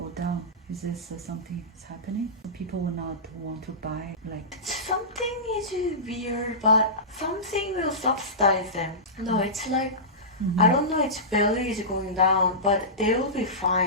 down. Is this something that's happening? People will not want to buy Something is weird, but something will subsidize them. No, it's like, I don't know, its value is going down, but they will be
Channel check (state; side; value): normal; both; correlation -0.18